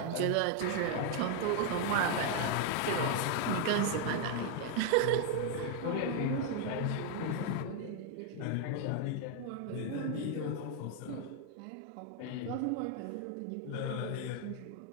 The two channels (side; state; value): both; different; correlation 0.01